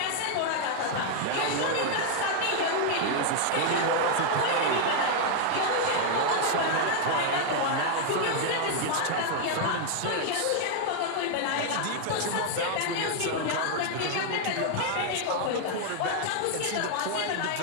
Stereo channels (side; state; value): both; different; correlation 0.00